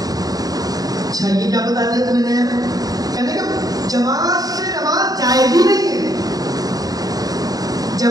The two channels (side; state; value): left; late; 0.18 ms